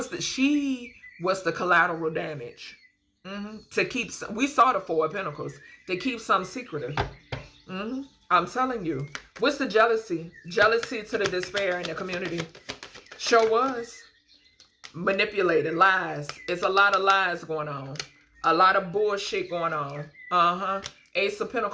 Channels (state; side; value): identical; both; correlation 1.00